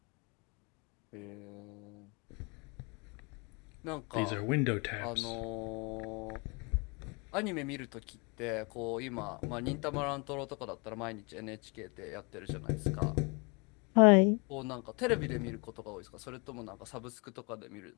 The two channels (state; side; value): quieter; right; 31.4 dB